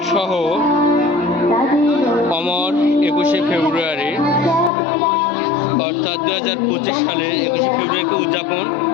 সহ অমর 21শে ফেব্রুয়ারি অর্থাৎ 2025 সালে 21শে ফেব্রুয়ারিকে উদযাপন,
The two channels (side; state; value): right; drops out; at 4.7 s